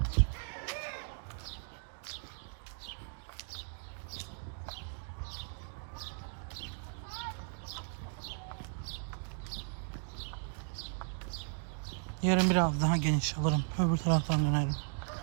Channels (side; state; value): left; silent; 54 dB below the other